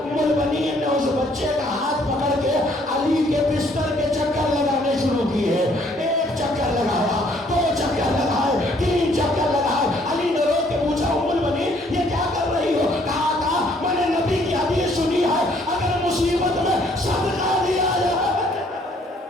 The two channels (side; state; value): both; normal; correlation 0.64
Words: البنین نے اس بچے کا ہاتھ پکڑ کے علی کے بستر کے چکر لگانے شروع کیے. ایک چکر لگایا, دو چکر لگائے, تین چکر لگائے. علی نے رو کے پوچھا, ام البنین یہ کیا کر رہی ہو؟ کہا تھا میں نے نبی کی حدیث سنی ہے, اگر مصیبت میں صدقہ دیا جائے.